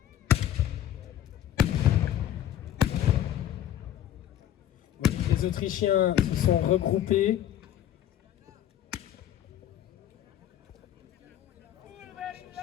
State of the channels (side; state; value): right; quieter; 11.4 dB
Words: Les Autrichiens se sont regroupés.